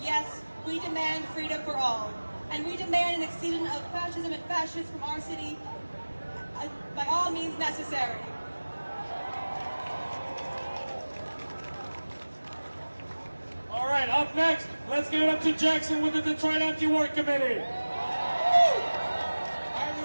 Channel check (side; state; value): both; inverted; correlation -1.00